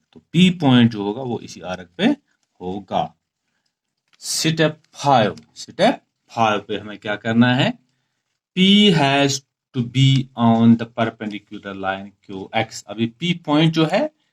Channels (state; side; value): identical; both; correlation 1.00